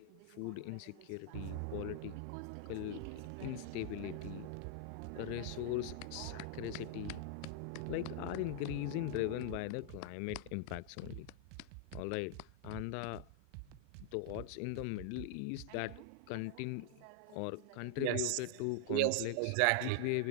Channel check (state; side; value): different; both; correlation -0.01